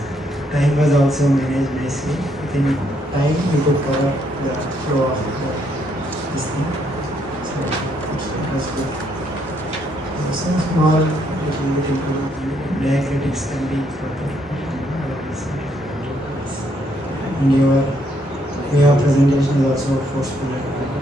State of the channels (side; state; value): both; normal; correlation 0.72